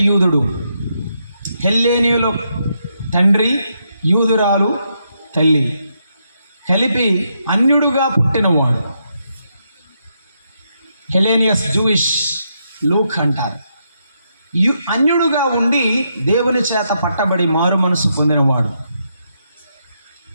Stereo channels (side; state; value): both; inverted; correlation -0.80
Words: యూదుడు, హెల్లేనీయుల తండ్రి, యూదురాలు తల్లి, కలిపి అన్యుడుగా పుట్టినవాడు. హెలేనియస్ జూయిష్ లూక్ అంటారు. అన్యుడుగా ఉండి దేవుని చేత పట్టబడి మారు మనసు పొందినవాడు.